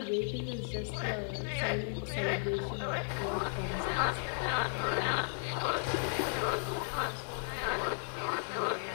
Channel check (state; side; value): silent; right; digital silence